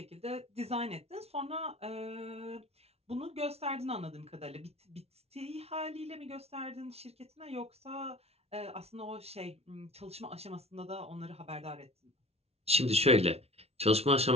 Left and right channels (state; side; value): late; left; 0.30 ms